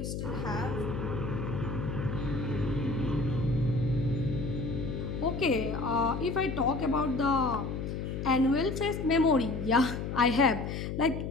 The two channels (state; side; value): noise; left; hum, 4 dB below the sound